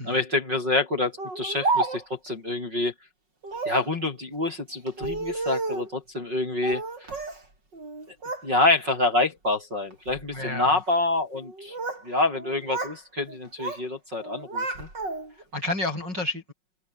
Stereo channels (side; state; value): left; late; 5.4 ms